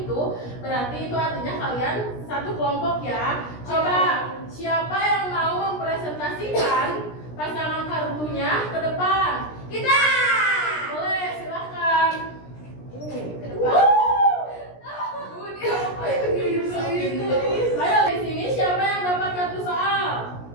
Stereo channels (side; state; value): right; late; 17 ms